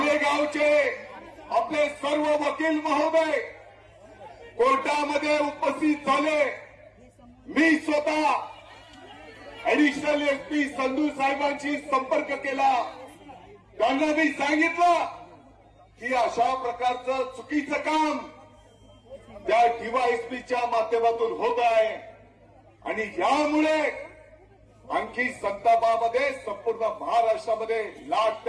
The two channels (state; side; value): identical; both; correlation 1.00